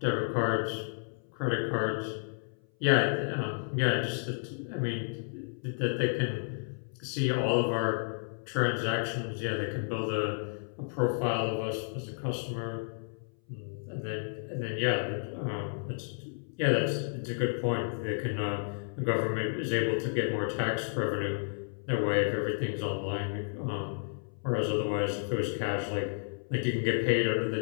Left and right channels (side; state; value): right; silent; 57 dB below the other